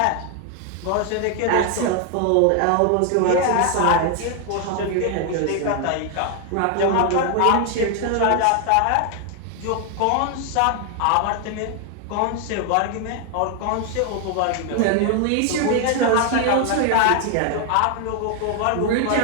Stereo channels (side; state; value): both; different; correlation 0.00